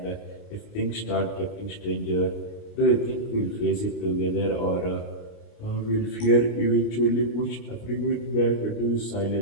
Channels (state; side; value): late; right; 29 ms